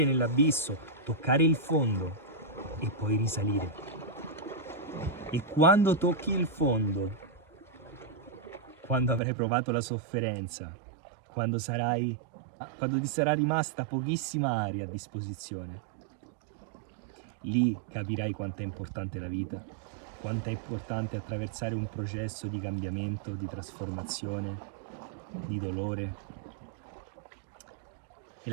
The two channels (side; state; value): left; drops out; at 9.2 s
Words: nell'abisso, toccare il fondo e poi risalire. E quando tocchi il fondo, quando avrai provato la sofferenza, quando ti sarà rimasta pochissima aria a disposizione, lì capirai quanto è importante la vita, quanto è importante attraversare un processo di cambiamento, di trasformazione, di dolore. E